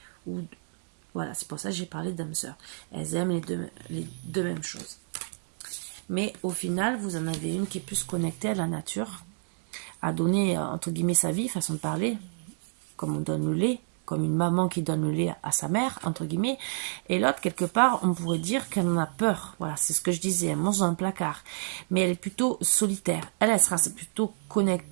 Ou, voilà, c'est pour ça que j'ai parlé d'âmes sœurs. Elles aiment les deux mêmes choses. Mais au final, vous en avez une qui est plus connectée à la nature, à donner, entre guillemets, sa vie, façon de parler, comme on donne le lait, comme une maman qui donne le lait à sa mère, entre guillemets, et l'autre, quelque part, on pourrait dire qu'elle en a peur. Voilà, c'est ce que je disais, elle mange dans un placard. Mais elle est plutôt solitaire. Elle sera plutôt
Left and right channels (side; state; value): left; silent; digital silence